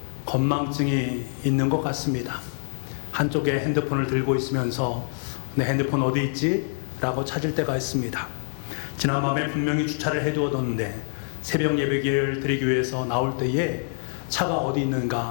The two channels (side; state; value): right; silent; digital silence